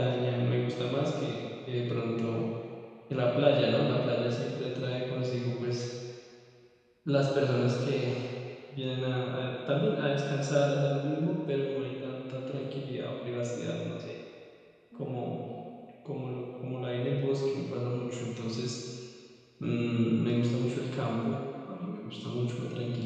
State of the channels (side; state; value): both; identical; correlation 1.00